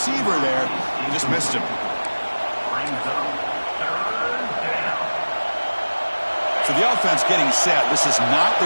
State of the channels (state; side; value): inverted; both; correlation -1.00